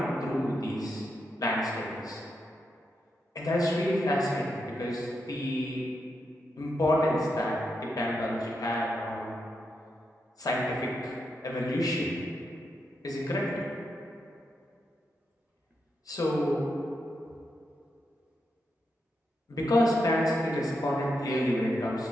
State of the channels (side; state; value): both; normal; correlation 0.84